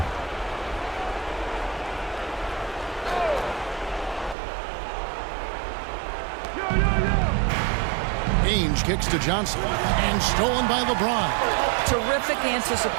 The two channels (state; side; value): drops out; left; at 4.4 s